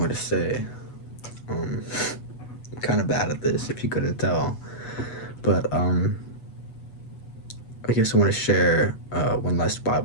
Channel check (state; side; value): late; right; 8.1 ms